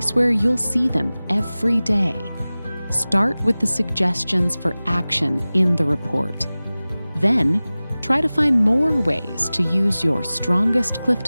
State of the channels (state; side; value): inverted; both; correlation -0.98